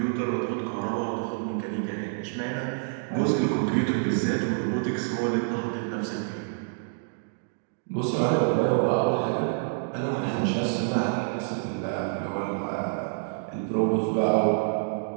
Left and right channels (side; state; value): left; silent; digital silence